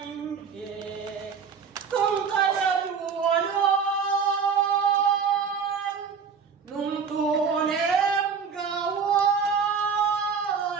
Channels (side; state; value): left; quieter; 6.2 dB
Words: Nung tunem gawa